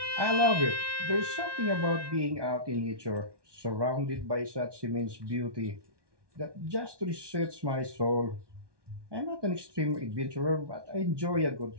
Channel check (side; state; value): left; late; 1.2 ms